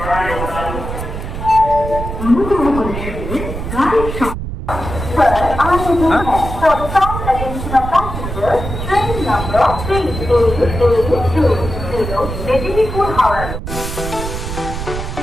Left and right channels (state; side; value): noise; right; rumble, 6 dB below the sound